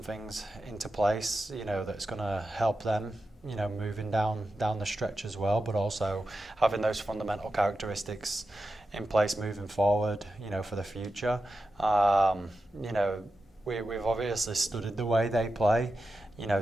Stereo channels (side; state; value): both; normal; correlation 0.90